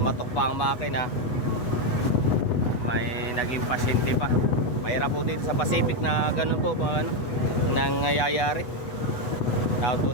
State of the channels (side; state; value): right; late; 8.1 ms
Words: pa ang makina. May naging pasyente pa. Mahirap po dito sa Pacific na ganun po nangyayari. Tawag